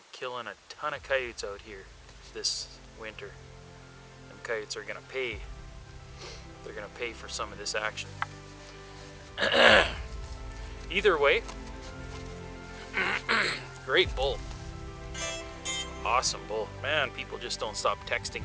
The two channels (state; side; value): identical; both; correlation 1.00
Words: killing a ton of coyotes out here this winter. Them coyotes are gonna pay. They're gonna pay for some of this action. Either way, great bull. Awesome bull. Man, people just don't stop